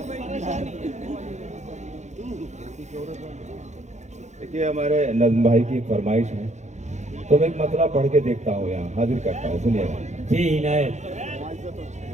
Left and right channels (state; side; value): late; left; 0.34 ms